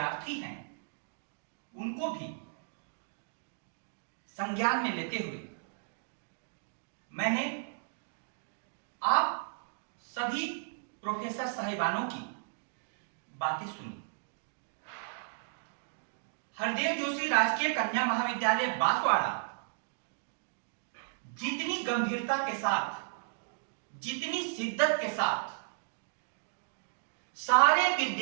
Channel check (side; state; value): left; silent; digital silence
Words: हैं उनको भी संज्ञान में लेते हुए मैंने आप सभी प्रोफेसर साहिबानों की बातें सुनी। हरदेव जोशी राजकीय कन्या महाविद्यालय बांसवाड़ा जितनी गंभीरता के साथ, जितनी शिद्दत के साथ सारे